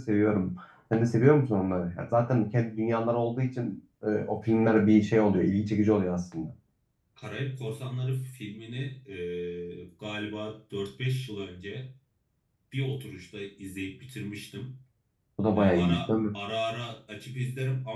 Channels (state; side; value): identical; both; correlation 1.00